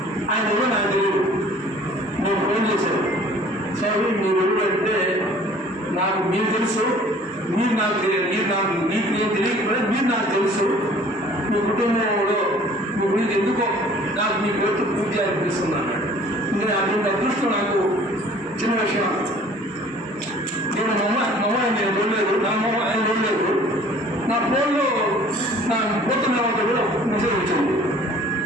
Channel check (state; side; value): normal; both; correlation 0.51